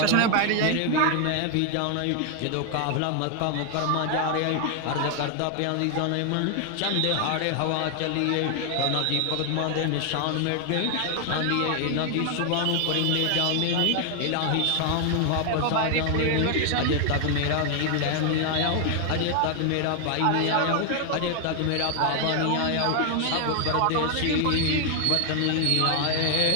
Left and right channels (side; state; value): both; different; correlation 0.00